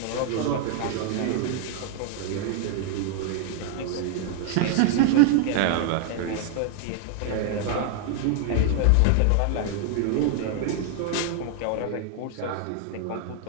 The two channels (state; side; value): different; both; correlation 0.00